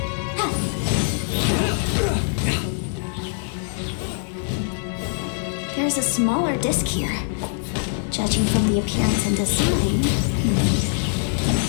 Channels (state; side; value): silent; right; 56 dB below the other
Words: There's a smaller disc here. Judging from the appearance and design...